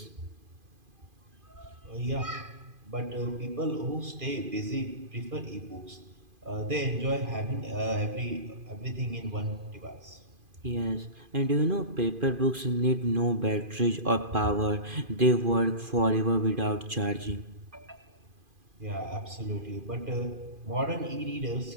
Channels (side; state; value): left; late; 2.5 ms